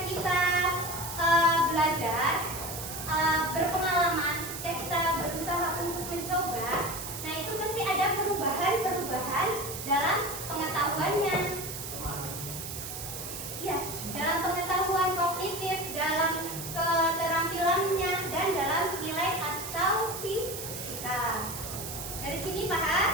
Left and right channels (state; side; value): noise; right; hiss, 8 dB below the sound